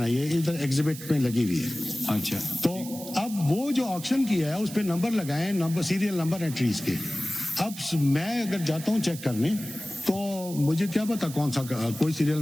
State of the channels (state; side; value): noise; right; hiss, 13 dB below the sound